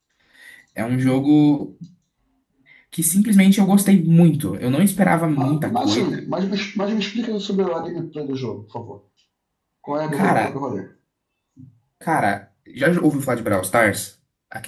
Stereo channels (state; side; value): identical; both; correlation 1.00